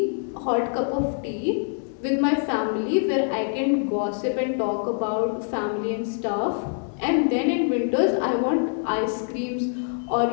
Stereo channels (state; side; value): silent; right; 58 dB below the other